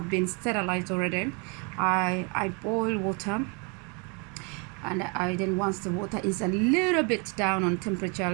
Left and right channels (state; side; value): quieter; left; 33.4 dB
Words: been sterilized already. I boil water, and then once the water is a little bit down on temperature,